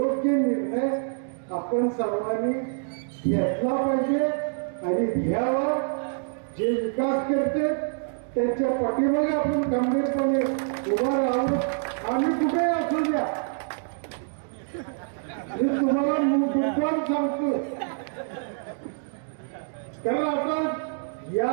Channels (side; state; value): left; silent; digital silence